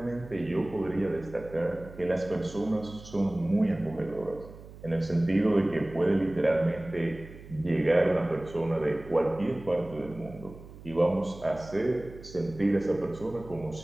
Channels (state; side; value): noise; right; hum, 17 dB below the sound